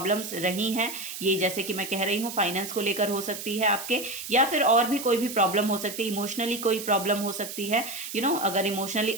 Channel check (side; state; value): right; noise; hiss, 9 dB below the sound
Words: रही हैं, ये जैसे कि मैं कह रही हूँ फाइनेंस को लेकर हो सकती है आपके, या फिर और भी कोई भी प्रॉब्लम हो सकती है, इमोशनली कोई प्रॉब्लम हो सकती है। अगर इमोशनली